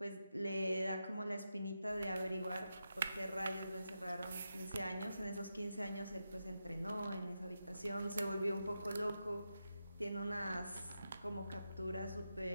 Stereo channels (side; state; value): both; inverted; correlation -0.88